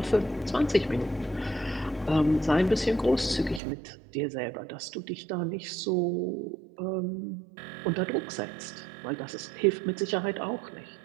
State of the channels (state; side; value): drops out; left; at 3.6 s